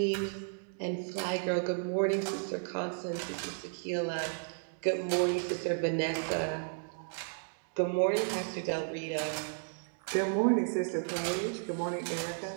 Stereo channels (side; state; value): left; silent; digital silence